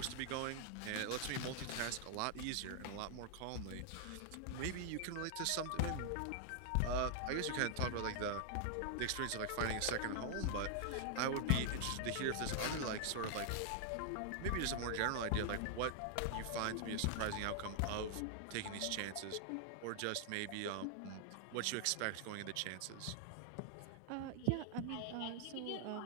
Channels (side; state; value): both; different; correlation 0.00